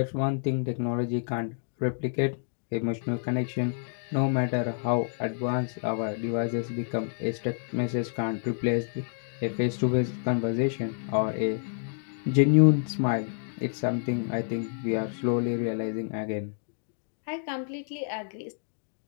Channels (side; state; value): right; silent; digital silence